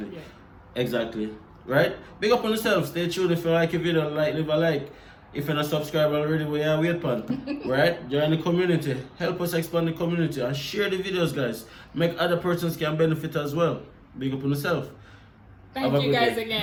Yeah. Exactly. Right? Big up on yourself. Stay tuned. If you like a video, leave a like. If you're not subscribed already, we are wait on. Right? Join the community. Help us expand the community and share the videos, guys. Make other persons can benefit as well. Big up on yourself. Thank you guys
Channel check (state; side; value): identical; both; correlation 1.00